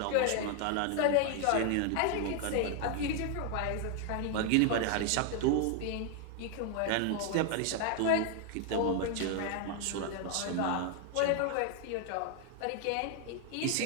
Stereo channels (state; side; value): different; both; correlation 0.00